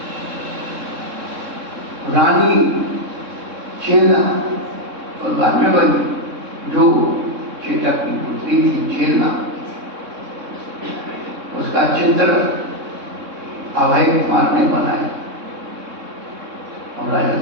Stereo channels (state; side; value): late; left; 3.6 ms